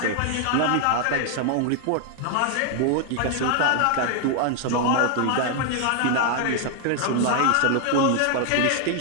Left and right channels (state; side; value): different; both; correlation 0.00